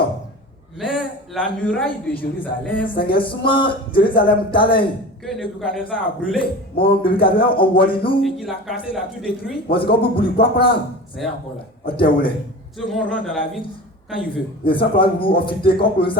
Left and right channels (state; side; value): normal; both; correlation 0.34